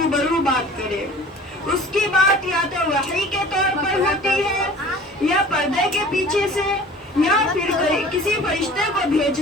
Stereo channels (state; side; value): normal; both; correlation 0.44